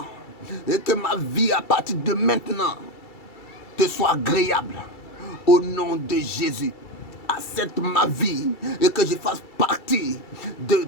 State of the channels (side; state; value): right; late; 2.3 ms